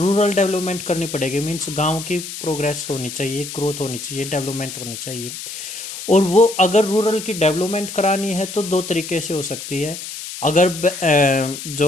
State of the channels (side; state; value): left; noise; hiss, 9 dB below the sound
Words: डेवलपमेंट करनी पड़ेगी। मीन्स गांव की प्रोग्रेस होनी चाहिए, ग्रोथ होनी चाहिए, डेवलपमेंट होनी चाहिए। और वो अगर रूरल की डेवलपमेंट करानी है तो दो तरीके से हो सकती है। अगर